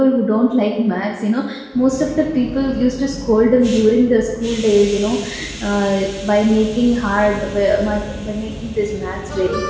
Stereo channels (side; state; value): both; identical; correlation 1.00